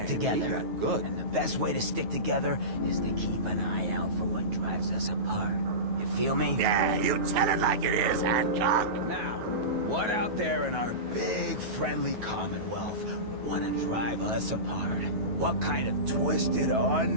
together. And the best way to stick together is to keep an eye out for what drives us apart. You feel me? Yeah, you tell it like it is, Hancock. Now, what out there in our big, friendly Commonwealth would want to drive us apart? What kind of twisted,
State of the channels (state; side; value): late; left; 9.3 ms